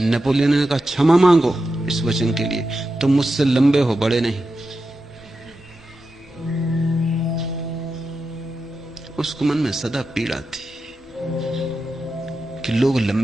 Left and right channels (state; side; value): normal; both; correlation 0.89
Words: नेपोलियन ने कहा, क्षमा मांगो इस वचन के लिए, तुम मुझसे लंबे हो, बड़े नहीं। उसको मन में सदा पीड़ा थी कि लोग